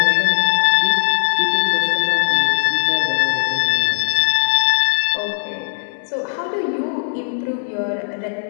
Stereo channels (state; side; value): silent; right; digital silence